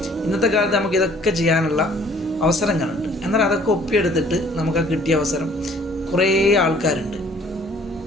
ഇന്നത്തെ കാലത്ത് നമുക്ക് ഇതൊക്കെ ചെയ്യാനുള്ള അവസരങ്ങളുണ്ട്. എന്നാൽ അതൊക്കെ ഒപ്പിയെടുത്തിട്ട് നമുക്ക് കിട്ടിയ അവസരം കുറേ ആൾക്കാരുണ്ട്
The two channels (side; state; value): both; normal; correlation 0.57